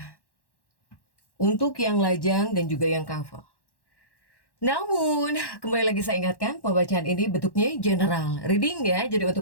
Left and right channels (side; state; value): right; late; 1.1 ms